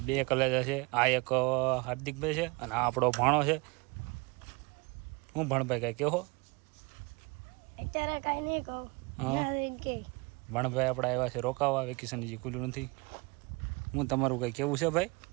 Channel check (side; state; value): left; quieter; 27.1 dB